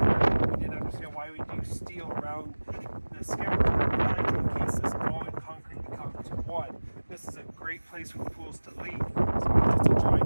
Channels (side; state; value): both; inverted; correlation -1.00